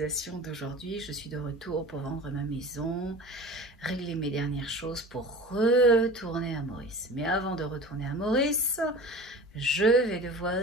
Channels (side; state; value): both; normal; correlation 0.37